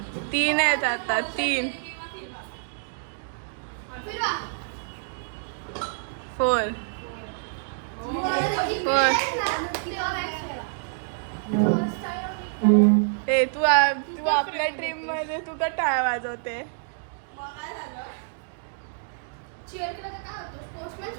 3 आहेत आता. 3 4 ए तू आपल्या ड्रीम मध्ये तू का टाळ वाजवते.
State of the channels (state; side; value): silent; left; digital silence